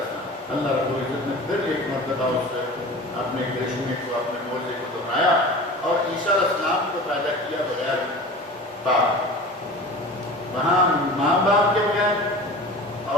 السلام. اللہ رب العزت نے پھر ایک مرتبہ اس سے اپنے کرشمے کو، اپنے معجزے کو دہرایا اور عیسیٰ علیہ السلام کو پیدا کیا بغیر باپ. وہاں ماں باپ کے بغیر،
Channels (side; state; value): both; normal; correlation 0.37